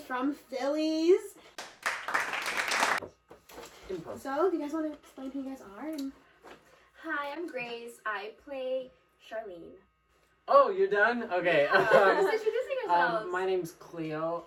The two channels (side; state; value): both; identical; correlation 1.00